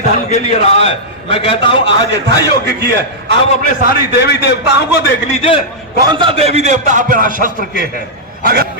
धर्म के लिए रहा है। मैं कहता हूं आज यथा योग्य की है। आप अपने सारी देवी देवताओं को देख लीजिए, कौन सा देवी देवता आप बिना शस्त्र के है।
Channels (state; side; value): normal; both; correlation -0.10